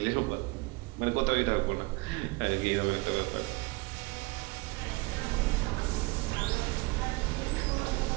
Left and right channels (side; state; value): left; quieter; 24.5 dB